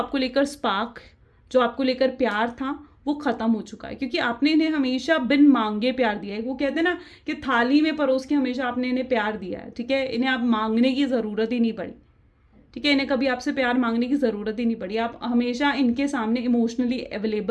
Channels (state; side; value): identical; both; correlation 1.00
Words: लेकर स्पार्क, जो आपको लेकर प्यार था वो ख़त्म हो चुका है, क्योंकि आपने इन्हें हमेशा बिन मांगे प्यार दिया है। वो कहते हैं ना कि थाली में परोस के हमेशा आपने इन्हें प्यार दिया है, ठीक है। इन्हें आप मांगने की ज़रूरत ही नहीं पड़ी, ठीक है। इन्हें कभी आपसे प्यार मांगने की ज़रूरत ही नहीं पड़ी, आप हमेशा इनके सामने इमोशनली